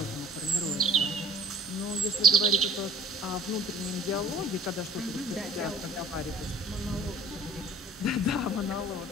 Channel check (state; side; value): normal; both; correlation 0.50